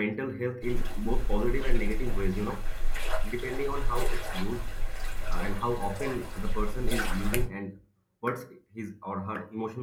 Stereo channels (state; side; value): identical; both; correlation 1.00